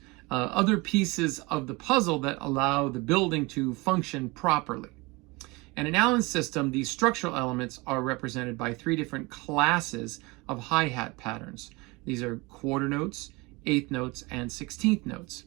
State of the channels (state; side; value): quieter; left; 25.0 dB